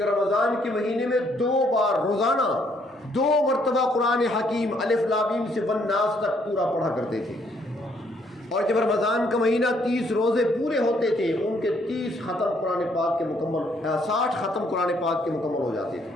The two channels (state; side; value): normal; both; correlation 0.68